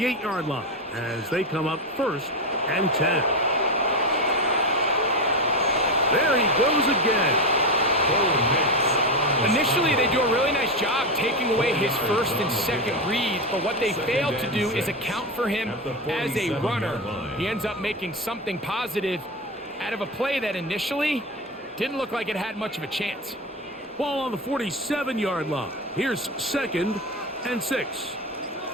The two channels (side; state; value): both; normal; correlation 0.16